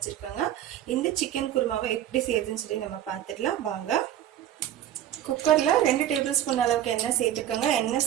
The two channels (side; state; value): left; quieter; 11.5 dB